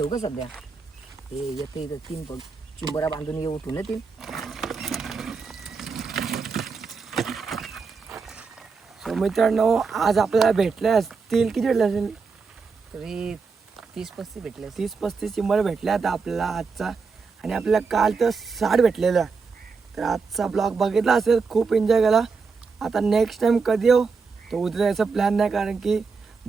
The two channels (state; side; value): quieter; left; 4.9 dB